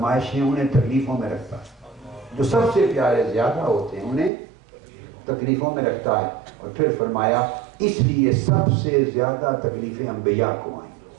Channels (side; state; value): left; drops out; at 4.3 s